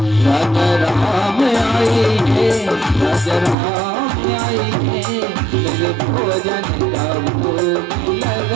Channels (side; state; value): left; drops out; at 3.6 s